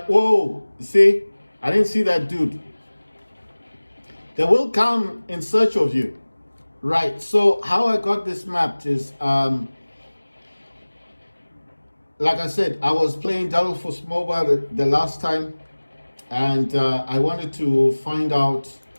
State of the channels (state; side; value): inverted; both; correlation -1.00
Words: Whoa, see, I didn't see that dude. They will come in search of you. Right. So how I got this mapped is, like I said, I was playing Delta Force Mobile the last time, and I wanted to find out,